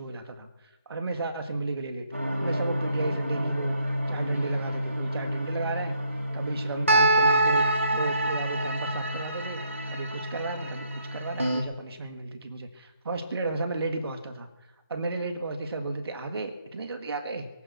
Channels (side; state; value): both; inverted; correlation -0.71